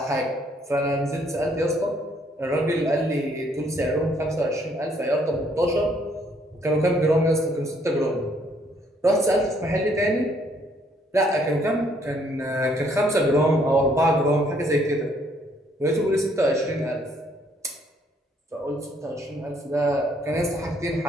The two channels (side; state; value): both; normal; correlation 0.67